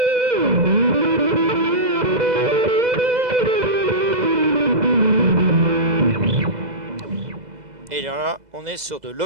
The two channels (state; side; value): late; left; 2.0 ms